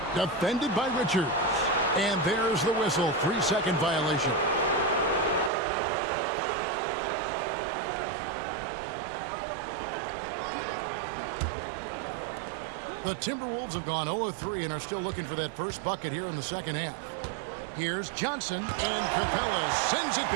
defended by Richards. And there's the whistle, 3-second violation. The Timberwolves have gone 0 of 3 and are still looking for that first bucket here in the second half. Here's Johnson, and Capella sends it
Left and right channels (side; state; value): left; drops out; at 5.5 s